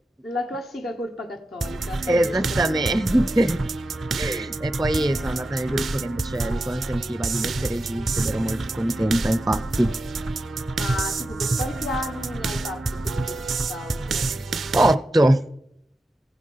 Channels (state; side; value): normal; both; correlation 0.90